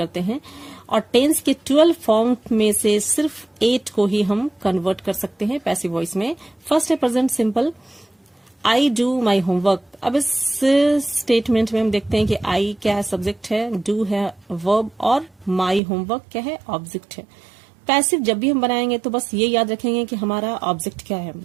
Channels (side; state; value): left; drops out; at 15.8 s